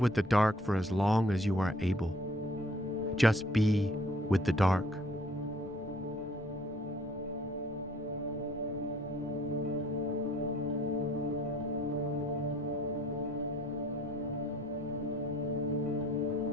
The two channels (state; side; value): normal; both; correlation 0.57